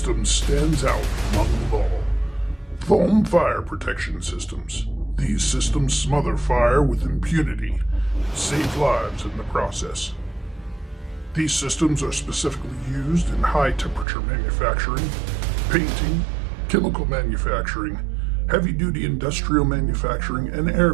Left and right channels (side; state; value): left; drops out; at 14.1 s